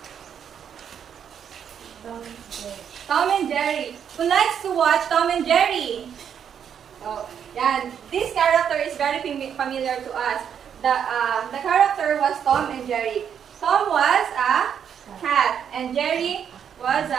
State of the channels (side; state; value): left; quieter; 8.2 dB